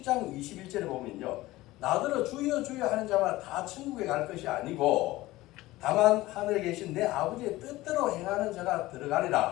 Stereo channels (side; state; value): right; quieter; 18.0 dB